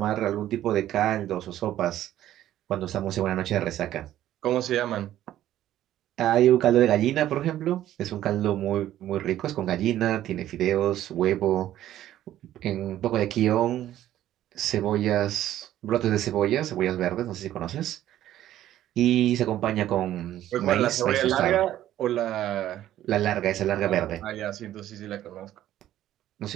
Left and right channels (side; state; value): left; quieter; 12.8 dB